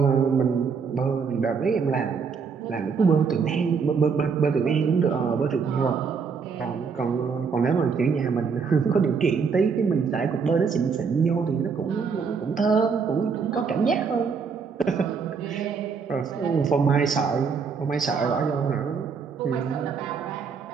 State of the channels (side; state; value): left; quieter; 5.7 dB